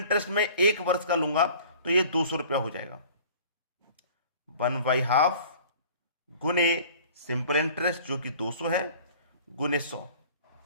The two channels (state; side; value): inverted; both; correlation -0.48